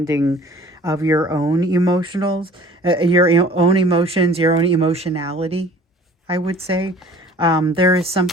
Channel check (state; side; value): normal; both; correlation 0.49